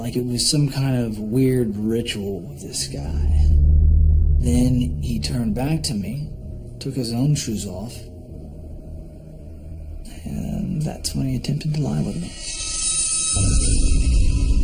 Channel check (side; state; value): both; identical; correlation 1.00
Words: it was some kind of weird ritual with this guy. Then he turned back to me, took his own shoes off, and that's when he attempted to lie with me.